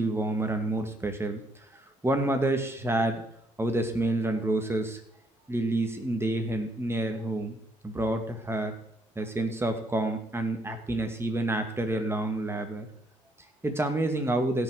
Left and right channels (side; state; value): both; normal; correlation 0.71